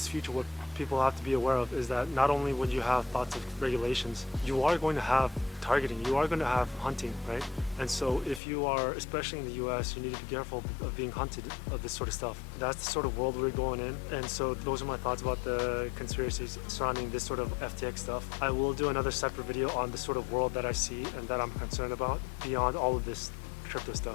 future, what people have to be aware of is that not only when you have thoughts of regulations, you are going to have targeting, you are going to have hunting, right? And so if you are, especially in the US, you need to be careful of being hunted of this sort of stuff. That's the sort of world we're going in. And so those are my thoughts about the conspiracies surrounding this sort of FTX stuff. I will do another separate video on the sort of world that I see and that I'm concerned about beyond all of this crypto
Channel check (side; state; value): right; drops out; at 8.4 s